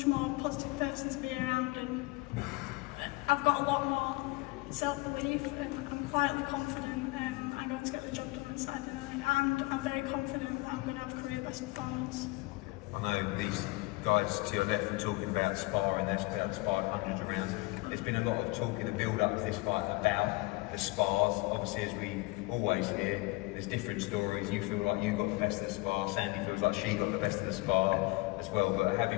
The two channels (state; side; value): quieter; right; 22.7 dB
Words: more positive person to be around, and I've got a lot more self-belief, and I'm quietly confident I'm going to get the job done on Saturday night, and I'm very confident that I'm going to have a career best performance. I know these guys to your left are talking about sparring, they've sparred hundreds of rounds. There's been a lot of talk in the build-up to this fight about the spars. Obviously, as we always hear, there's different stories. You feel like you got the best of the spar, Sandy feels like she got the best of the spar as well, but